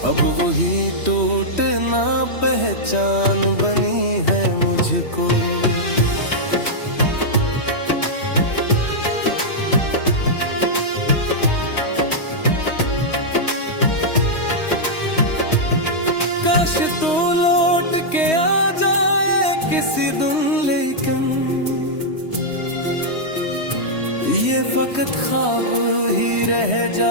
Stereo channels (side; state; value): right; late; 3.1 ms